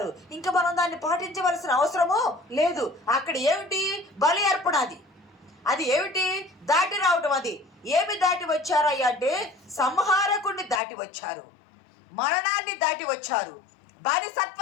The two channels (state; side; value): drops out; right; at 10.8 s